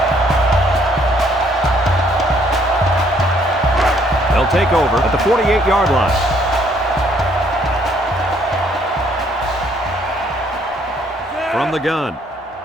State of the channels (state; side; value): normal; both; correlation 0.65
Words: They'll take over at the 48-yard line. From the gun.